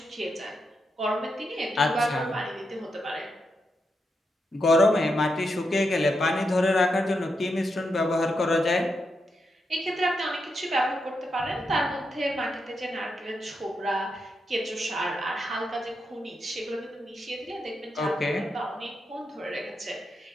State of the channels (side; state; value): both; normal; correlation 0.84